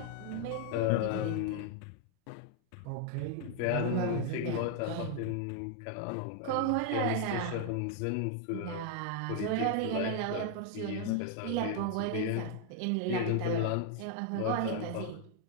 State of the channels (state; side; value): different; both; correlation 0.00